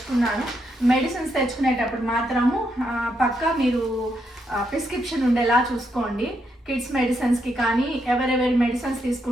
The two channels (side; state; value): both; normal; correlation 0.79